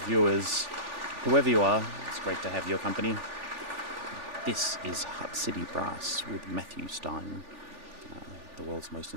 viewers, whoever you are, it's great to have your company. This is Hutt City Brass with Matthew Stein, the world's most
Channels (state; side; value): late; left; 3.4 ms